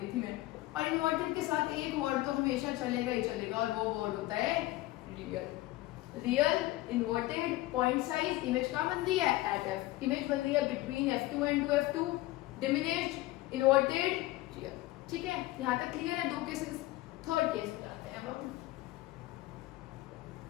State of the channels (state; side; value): quieter; right; 18.0 dB